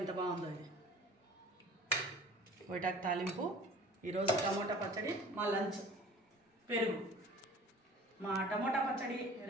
ఎంత బాగుందో ఇది కొయిటాకు తాలింపు. ఈరోజు టమోటా పచ్చడి, మా లంచ్ పెరుగు. మా టమోటా పచ్చడి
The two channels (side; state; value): both; normal; correlation 0.46